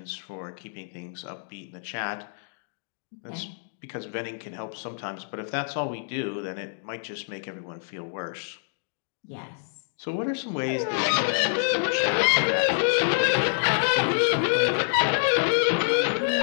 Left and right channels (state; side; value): silent; right; digital silence